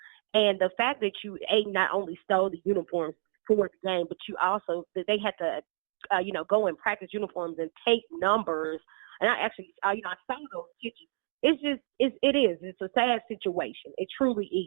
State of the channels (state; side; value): silent; left; 58 dB below the other